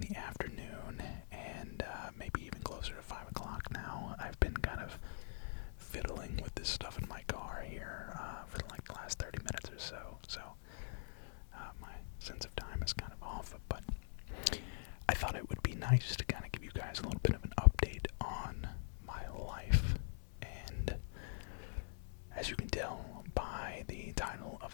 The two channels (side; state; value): right; silent; digital silence